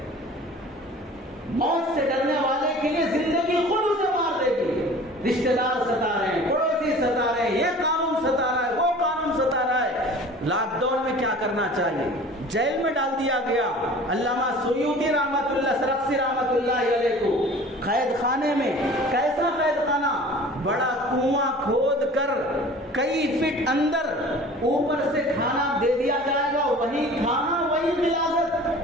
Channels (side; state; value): both; normal; correlation 0.44